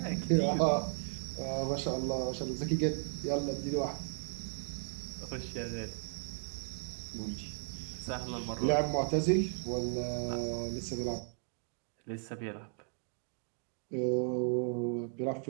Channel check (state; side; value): silent; left; 54 dB below the other